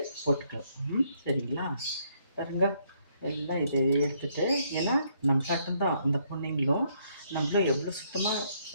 போட்டுக்கலாம். சரிங்களா? பாருங்க, எல்லாம் இதை எடுத்துகிட்டு, ஏன்னா நம்ம தான் அந்த பொண்ணுங்களும் நம்மளும் எவ்வளோ சுத்தமாக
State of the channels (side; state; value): both; inverted; correlation -0.71